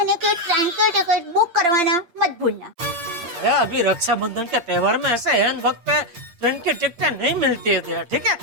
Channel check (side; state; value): left; late; 8.6 ms